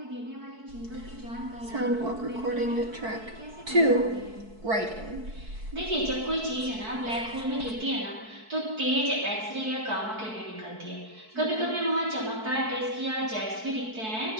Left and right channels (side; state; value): left; late; 4.6 ms